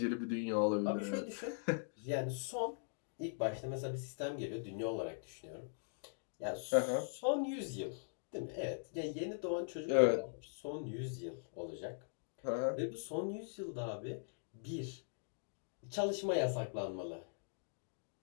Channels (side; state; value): right; silent; digital silence